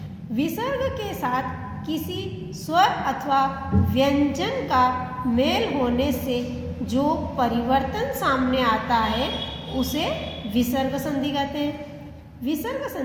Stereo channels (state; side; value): identical; both; correlation 1.00